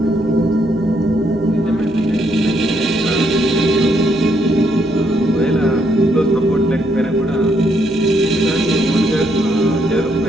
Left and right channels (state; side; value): noise; left; hum, 20 dB below the sound